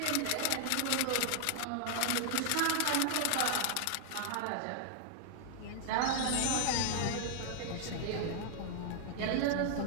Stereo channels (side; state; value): both; different; correlation 0.00